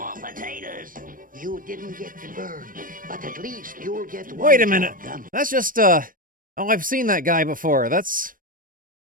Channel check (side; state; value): left; late; 0.40 ms